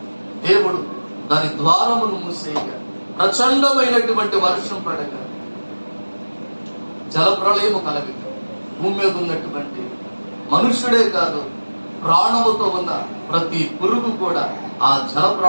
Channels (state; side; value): inverted; both; correlation -1.00